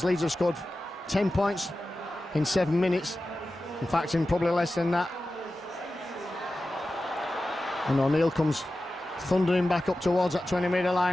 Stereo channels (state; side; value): normal; both; correlation 0.94